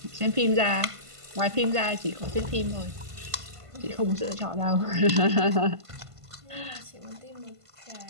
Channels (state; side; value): late; left; 1.5 ms